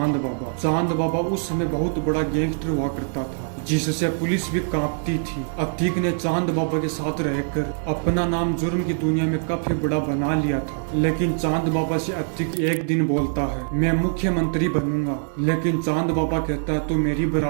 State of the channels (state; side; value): silent; left; 63 dB below the other